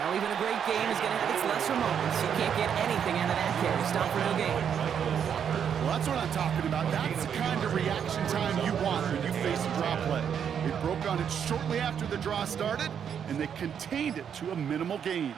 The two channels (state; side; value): quieter; left; 8.1 dB